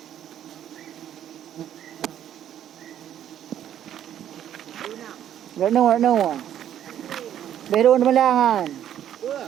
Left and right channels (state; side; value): quieter; left; 10.6 dB